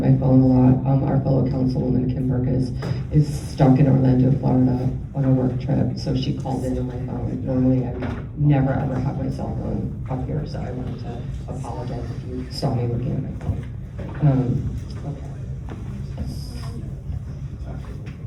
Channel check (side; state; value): both; identical; correlation 1.00